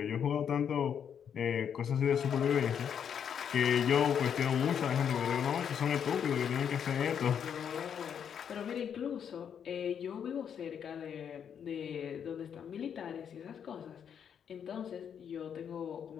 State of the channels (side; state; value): right; quieter; 8.1 dB